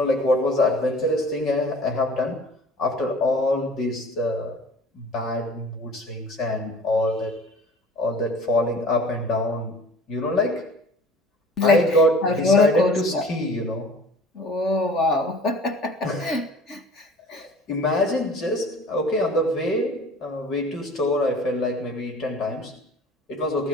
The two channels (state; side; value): normal; both; correlation 0.46